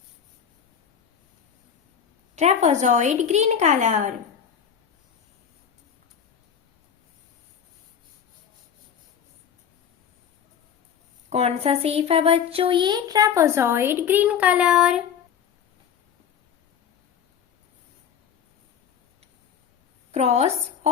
Trapezoid green colour. कौन सा शेप है बच्चों? ये trapezoid green colour. Cross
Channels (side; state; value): right; quieter; 8.0 dB